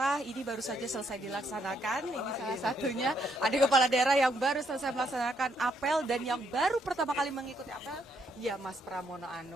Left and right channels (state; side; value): normal; both; correlation 0.73